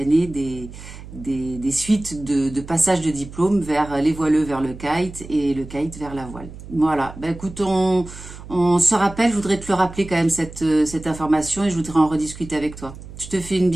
des suites de passage de diplôme vers les voileux vers le kite et le kite vers la voile. Voilà, ben écoute, on se rappelle, je voudrais te le rappeler quand même cette information et je voudrais en rediscuter avec toi. Je te fais une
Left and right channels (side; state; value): right; noise; hum, 15 dB below the sound